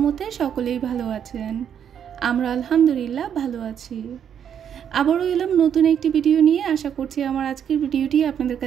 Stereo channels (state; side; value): quieter; left; 8.6 dB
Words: সকলেই ভালো আছেন। আমরা আলহামদুলিল্লাহ ভালো আছি। আবারও এলাম নতুন একটি ভিডিও নিয়ে। আশা করছি আমার আজকের ভিডিওটি আপনাদের